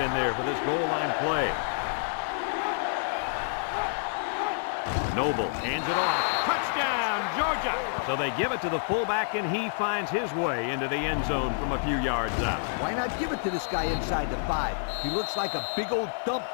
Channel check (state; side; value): silent; right; 58 dB below the other